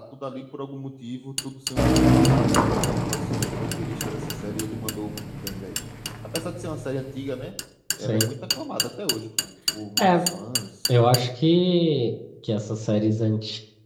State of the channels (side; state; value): both; identical; correlation 1.00